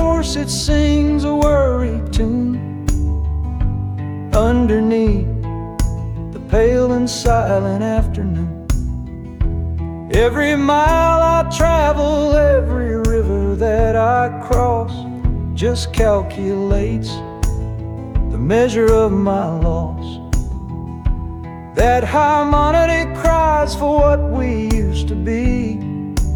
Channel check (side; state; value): both; identical; correlation 1.00